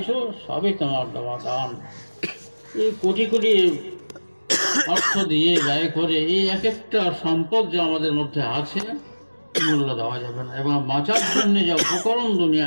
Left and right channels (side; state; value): both; inverted; correlation -1.00